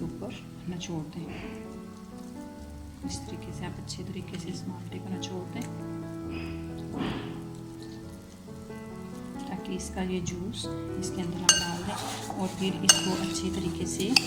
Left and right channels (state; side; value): identical; both; correlation 1.00